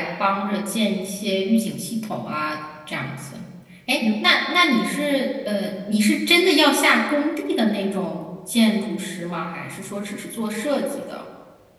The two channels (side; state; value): both; identical; correlation 1.00